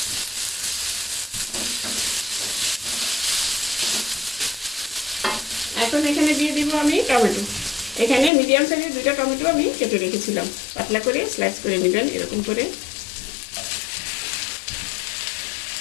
এখন এখানে দিয়ে দিব আমি টমেটো। এখানে মিডিয়াম সাইজের 2টা টমেটো আমি কেটে রেখেছিলাম। পাতলা করে স্লাইস করে নেবেন এরকম করে,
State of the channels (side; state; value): right; drops out; at 8.3 s